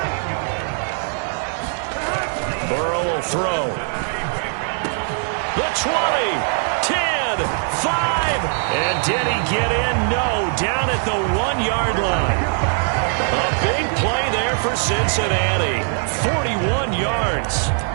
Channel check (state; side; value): silent; left; 55 dB below the other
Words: Burrow will throw. The 20, 10, 5. And did he get in? No. Down at the 1-yard line. A big play there for Cincinnati. 41 yards.